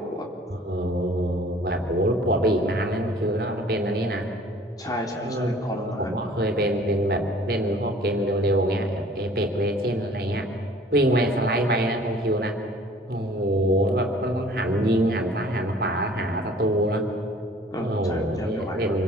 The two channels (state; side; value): normal; both; correlation 0.52